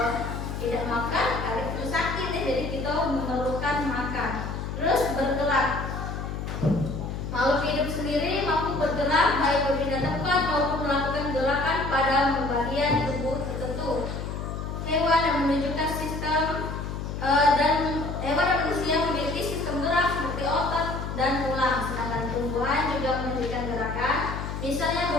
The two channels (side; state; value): left; noise; hum, 5 dB below the sound